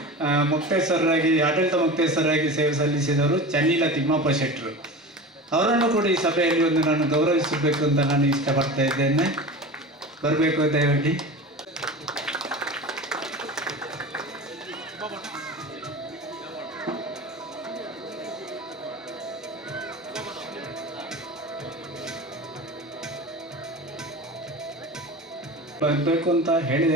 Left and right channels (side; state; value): both; normal; correlation 0.32